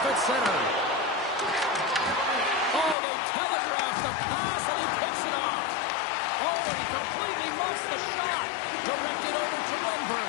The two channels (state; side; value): drops out; right; at 3.0 s